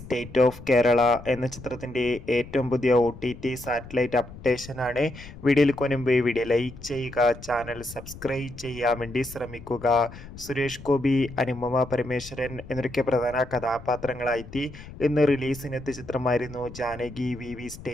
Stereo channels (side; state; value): left; noise; rumble, 16 dB below the sound